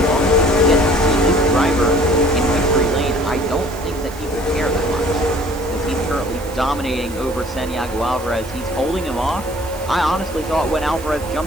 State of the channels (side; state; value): right; noise; hiss, 19 dB below the sound